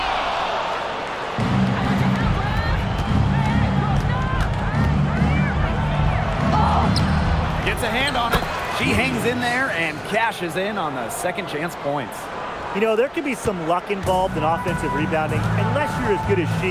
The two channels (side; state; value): both; identical; correlation 1.00